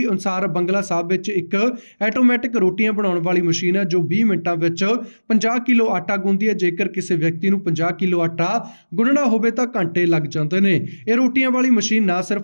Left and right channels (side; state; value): both; inverted; correlation -1.00